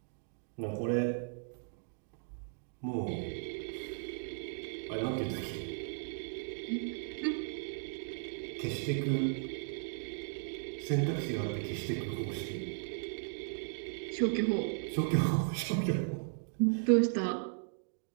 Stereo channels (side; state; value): left; silent; digital silence